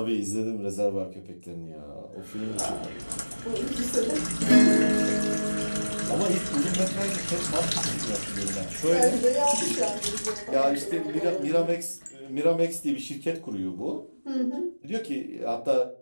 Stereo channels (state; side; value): inverted; both; correlation -1.00